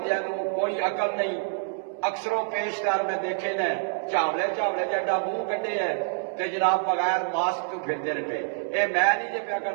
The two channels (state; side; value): silent; left; 60 dB below the other